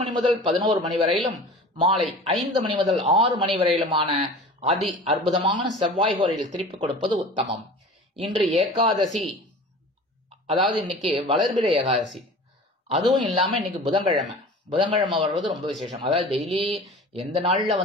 முதல் 11 மணி வரையிலும், மாலை 5 மணி முதல் 6 மணி வரையிலுமான அதி அற்புதமான செவ்வாய் கோரையில் திருப்பிக் கொடுப்பது உத்தமம். இன்று ஏகாதசி, அதாவது இன்னைக்கு வளர்பிறை ஏகாதசி. அதுவும் இல்லாம இன்னைக்கு புதன்கிழமை வர்றது ரொம்ப விசேஷம். அதாவது டெய்லி எந்த நாள்ல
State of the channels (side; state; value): both; normal; correlation 0.39